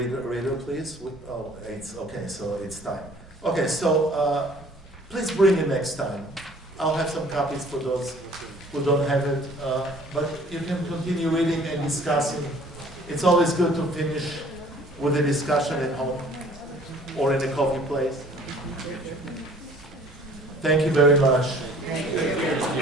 please. It's okay, so it's time. Okay, so please bring it next time. I'll have some copies for those who don't have it. But you can continue reading and discussing. It's always good to finish with a discussion at home or in a coffee place. Thank you very much. Thank you.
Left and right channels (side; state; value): both; normal; correlation 0.53